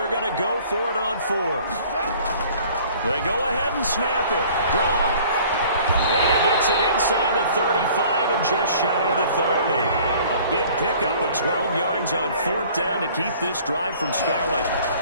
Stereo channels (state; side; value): inverted; both; correlation -0.52